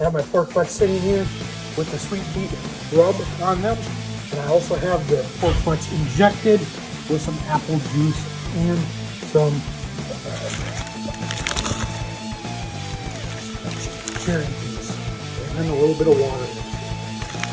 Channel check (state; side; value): identical; both; correlation 1.00